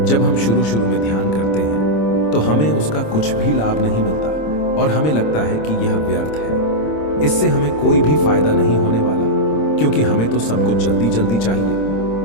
जब हम शुरू में ध्यान करते हैं तो हमें उसका कुछ भी लाभ नहीं मिलता और हमें लगता है कि यह व्यर्थ है, इससे हमें कोई भी फायदा नहीं होने वाला, क्योंकि हमें तो सब कुछ जल्दी जल्दी चाहिए।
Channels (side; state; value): right; late; 26 ms